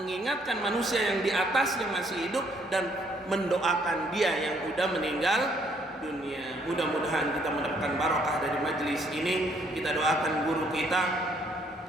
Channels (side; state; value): both; normal; correlation 0.66